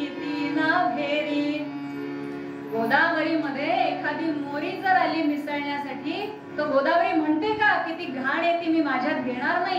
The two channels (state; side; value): identical; both; correlation 1.00